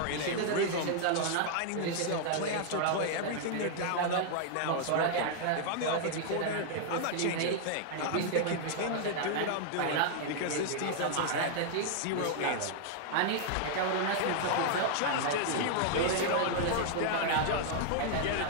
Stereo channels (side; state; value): both; different; correlation -0.01